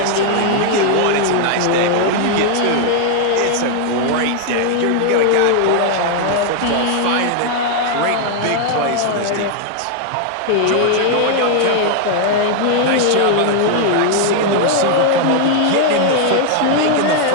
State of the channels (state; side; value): different; both; correlation 0.00